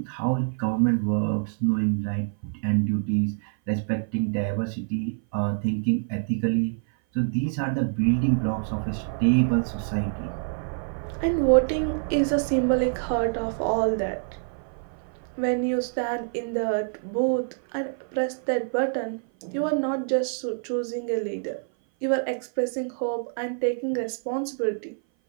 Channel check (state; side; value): silent; left; 57 dB below the other